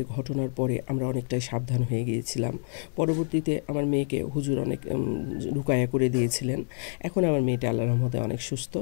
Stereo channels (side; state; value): right; silent; digital silence